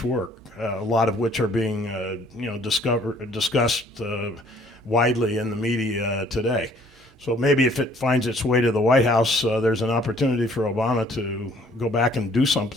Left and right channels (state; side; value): normal; both; correlation 0.59